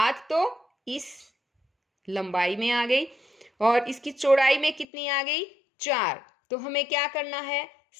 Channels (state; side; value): drops out; right; at 4.9 s